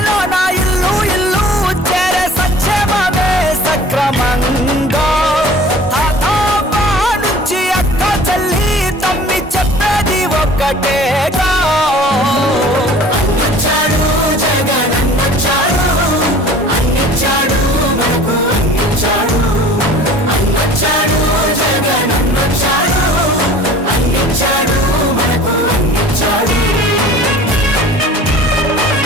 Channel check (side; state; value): both; normal; correlation 0.46